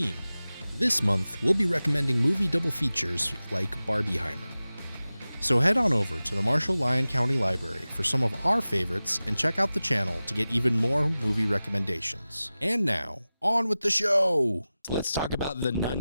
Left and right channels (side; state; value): both; inverted; correlation -0.96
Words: This month, we'll be recommending movie double features like Barbieheimer. So head on over to the Marshall Lyon County Library for some of our favorites and check out the channel to get even more movie recommendations. And now, on with the show! Let's talk about The